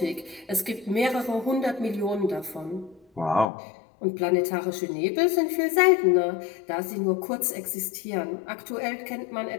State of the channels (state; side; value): drops out; right; at 3.5 s